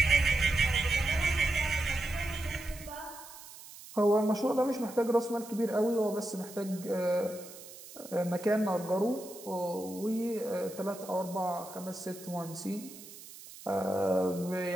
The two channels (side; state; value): right; noise; hiss, 16 dB below the sound